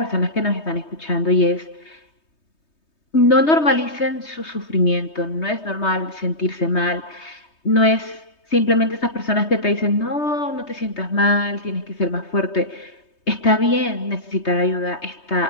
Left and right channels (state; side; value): late; right; 3.2 ms